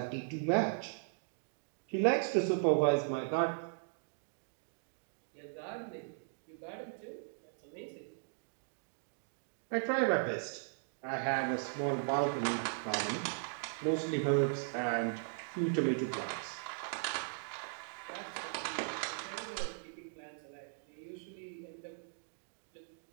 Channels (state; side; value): silent; left; digital silence